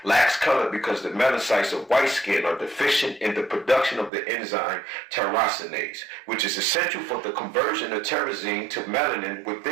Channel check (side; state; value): left; drops out; at 4.1 s